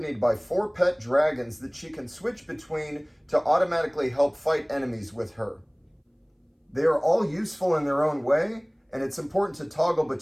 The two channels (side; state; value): both; identical; correlation 1.00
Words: by 4 pet dragons that she can switch between to automatically help fight enemies with her. They are all useful in their own way, and it's important to toggle